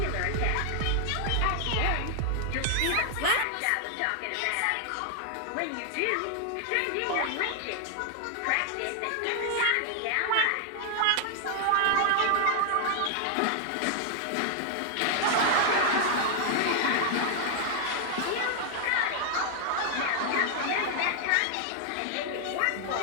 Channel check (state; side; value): different; both; correlation 0.00